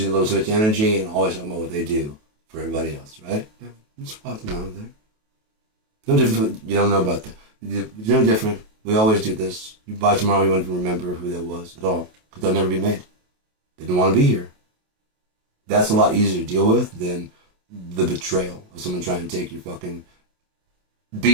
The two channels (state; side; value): late; left; 28 ms